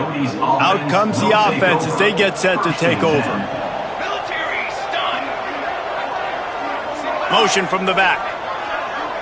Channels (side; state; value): both; identical; correlation 1.00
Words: comes the offense as they get set to take over. Motion from the back.